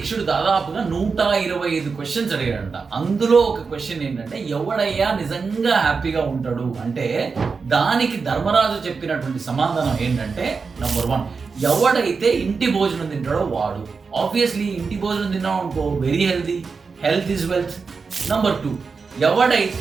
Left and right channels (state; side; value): quieter; left; 4.9 dB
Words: దాదాపుగా 125 క్వశ్చన్స్ అడిగాడంట. అందులో ఒక క్వశ్చన్ ఏంటంటే ఎవడయ్యా నిజంగా హ్యాపీగా ఉంటాడు అంటే, దానికి ధర్మరాజు చెప్పినటువంటి సమాధానం ఏంటంటే నంబర్ 1, ఎవడైతే ఇంటి భోజనం తింటాడో వాడు. ఆబ్వియస్లీ ఇంటి భోజనం తిన్నాం అనుకో, very healthy, health is wealth. Number 2,